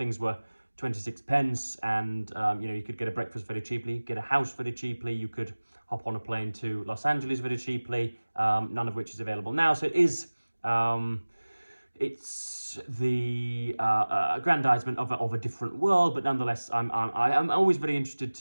were 26 pence, and you could get a breakfast very cheaply, get a house very cheaply, you could hop on a plane to Los Angeles very cheaply, none of which is available now. So it is it's the aggrandizement of a different world, but nonetheless, I'm always very interested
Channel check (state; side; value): inverted; both; correlation -1.00